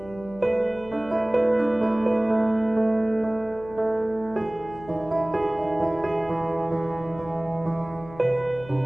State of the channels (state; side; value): noise; left; hum, 18 dB below the sound